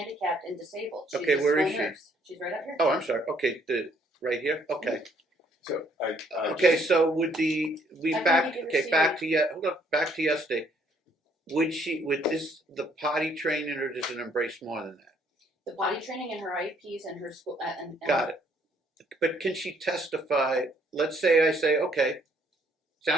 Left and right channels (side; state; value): both; normal; correlation 0.65